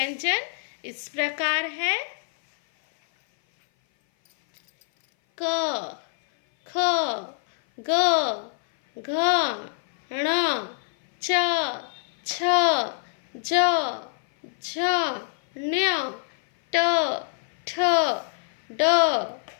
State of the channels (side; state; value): right; silent; 57 dB below the other